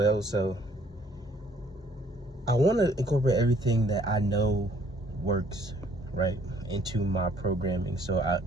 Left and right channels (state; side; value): normal; both; correlation 0.62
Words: So I want to incorporate everything that I know works, right, into my programming. So I